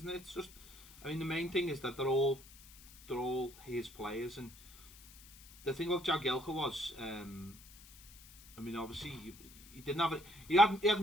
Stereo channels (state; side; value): noise; left; hiss, 20 dB below the sound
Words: it? It's just, I mean, the main thing is that they're all his players, and the thing about Jagielka was, I mean, obviously he didn't have it. He